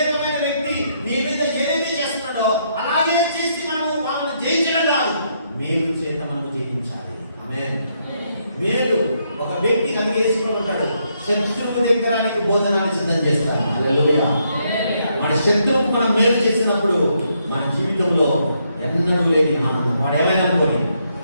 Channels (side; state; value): both; inverted; correlation -0.75